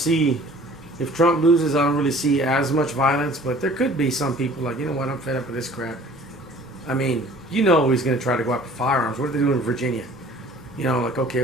if Trump loses, I don't really see as much violence, but there could be some people like, you know what, I'm fed up with this crap. He's going to try to go after firearms. What are they doing in Virginia? Like, okay,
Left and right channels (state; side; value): normal; both; correlation 0.50